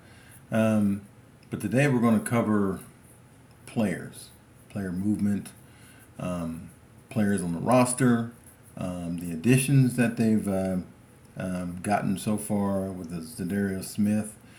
Um, but today we're going to cover players, player movement, um, players on the roster, the additions that they've gotten so far with the Zadarius Smith,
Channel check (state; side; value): identical; both; correlation 1.00